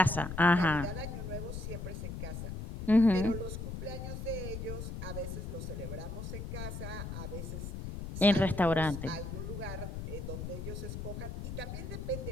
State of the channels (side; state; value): left; noise; rumble, 6 dB below the sound